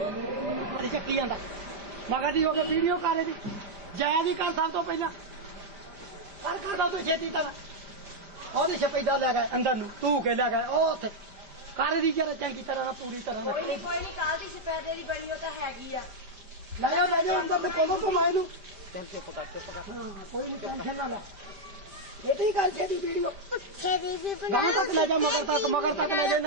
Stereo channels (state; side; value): late; left; 5.0 ms